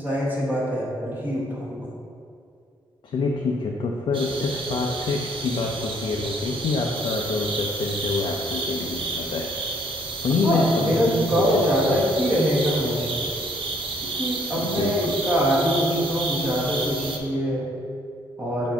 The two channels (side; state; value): both; normal; correlation 0.64